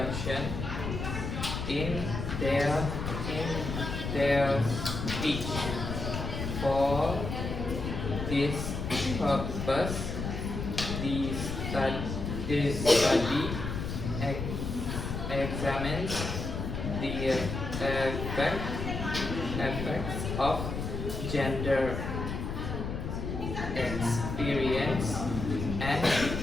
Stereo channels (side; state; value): left; noise; rumble, 4 dB below the sound